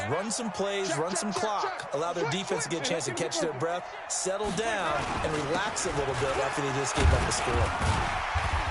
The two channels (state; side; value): identical; both; correlation 1.00